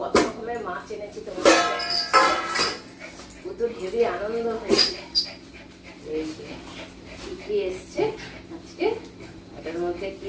রকমের মাছ এনেছি তোমার। তো হেবি আনন্দ হয়েছে। এই যে কি এসছে আজকে, এটার মধ্যে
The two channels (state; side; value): identical; both; correlation 1.00